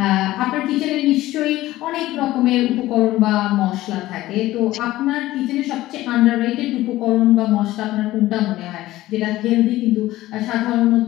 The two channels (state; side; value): quieter; right; 16.2 dB